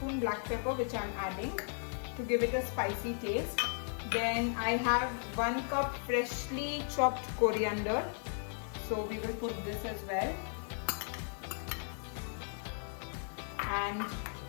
black pepper which I am adding to give it a spicy taste. Then I have 1 cup freshly chopped coriander. So we will put this as well. And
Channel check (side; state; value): right; silent; 54 dB below the other